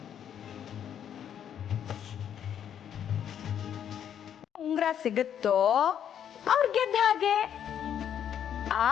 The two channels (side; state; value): right; quieter; 9.2 dB